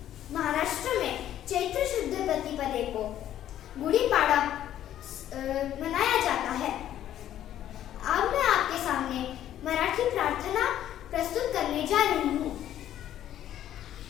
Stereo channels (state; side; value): quieter; right; 11.6 dB